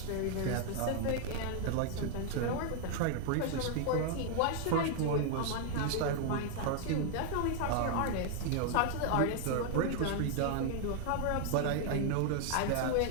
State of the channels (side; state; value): both; different; correlation 0.00